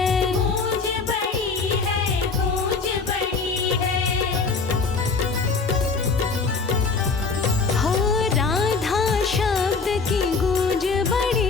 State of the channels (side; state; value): right; quieter; 4.5 dB